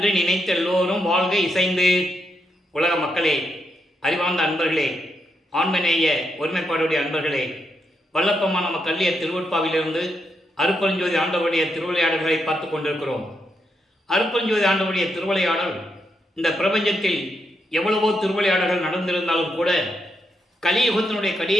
நினைத்த எல்லோரும் வாழ்க இசைந்து. உலக மக்களே, அறிவார்ந்த அன்பர்களே, ஆண்மநேய ஒருமைப்பாடுடைய அன்பர்களே, வல்லப்பமான நம்ம கல்லிய திருவட்பாவிலிருந்து அருட்பெருஞ்சோதி ஆண்டவருடைய திருவிளையாடல்களை பார்த்து கொண்டிருக்கிறோம். அருட்பெருஞ்சோதி ஆண்டவருடைய திருவிளையாடல் இந்த பிரபஞ்சத்தில் எவ்வளவோ திருவிளையாடல்கள் நடந்திருந்தாலும் கூட கலியுகத்தினுடைய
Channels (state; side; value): normal; both; correlation 0.81